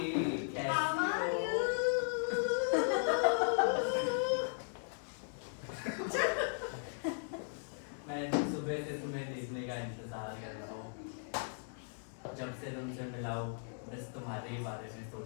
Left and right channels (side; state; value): right; silent; digital silence